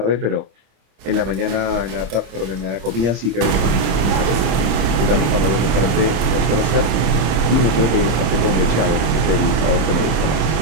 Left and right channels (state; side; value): late; left; 26 ms